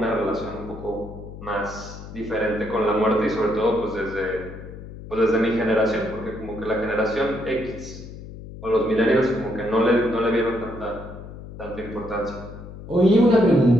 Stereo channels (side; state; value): left; noise; hum, 13 dB below the sound